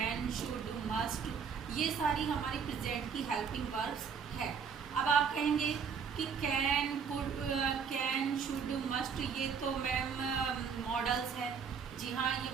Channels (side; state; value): left; quieter; 6.5 dB